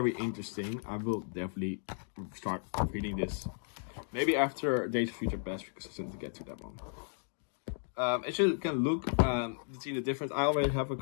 interesting. I will definitely start reading this. Maybe after Days of Future Past, because I still need to get to that one. As you can look, see the difference. I already have a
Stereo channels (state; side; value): silent; right; 55 dB below the other